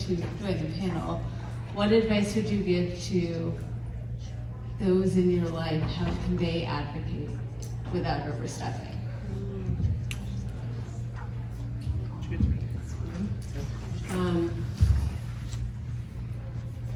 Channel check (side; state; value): both; identical; correlation 1.00